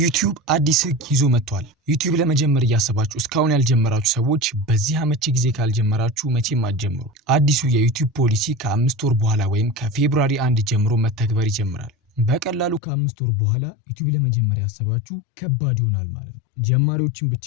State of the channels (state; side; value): drops out; right; at 12.8 s